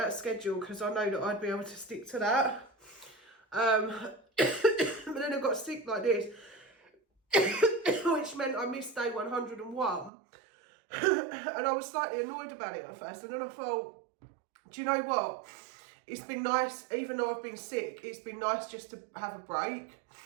schedule because I know that I'd be able to stick to that. But then I got sick like this, which meant I missed day 101. And I was slightly annoyed about it at first. And then I thought, do you know what? It's been nice, even though I've been sick, it's been nice just to have a break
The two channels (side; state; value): left; drops out; at 10.1 s